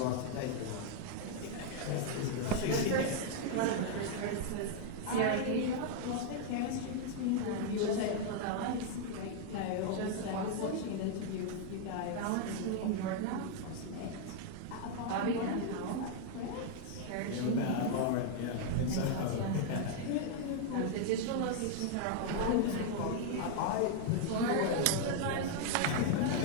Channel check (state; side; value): different; both; correlation 0.00